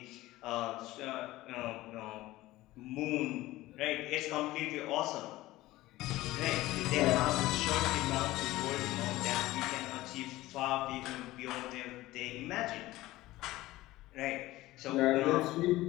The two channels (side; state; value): right; quieter; 17.5 dB